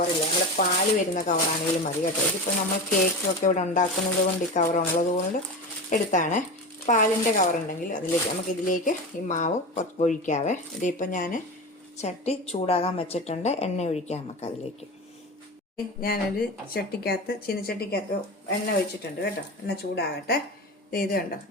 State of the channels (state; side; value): normal; both; correlation 0.26